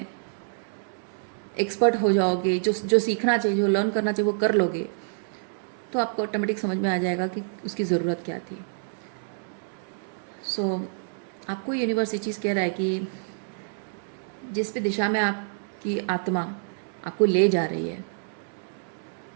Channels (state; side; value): silent; left; digital silence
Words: एक्सपर्ट हो जाओगे, जो सीखना चाहिए, जो लर्न करना चाहिए वो कर लोगे, तो आपको ऑटोमेटिक समझ में आ जाएगा कि उसकी ज़रूरत क्या थी। सो आपको यूनिवर्स ये चीज़ कह रहा है कि जिस भी दिशा में आपकी आत्मा आपको ले जा रही है,